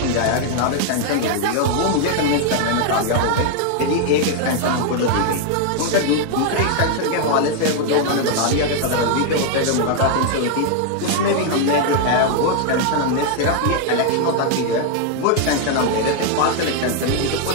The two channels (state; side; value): different; both; correlation 0.00